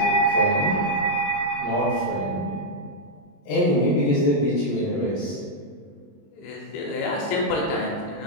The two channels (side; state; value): right; late; 20 ms